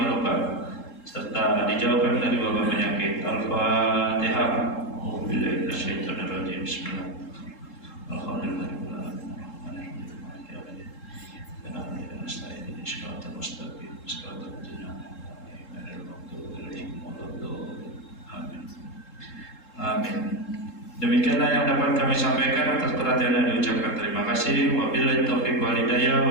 serta dijauhkan dari wabah penyakit. Al-Fatihah. Bismillah. Alhamdulillah. Amin. Demikianlah yang dapat kami sampaikan. Atas perhatian yang diucapkan terima kasih. Wabillahi taufiq wal hidayah.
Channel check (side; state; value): right; late; 3.7 ms